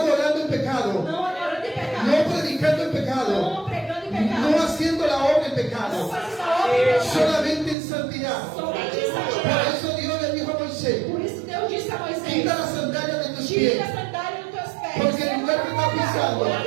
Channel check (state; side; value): drops out; left; at 7.8 s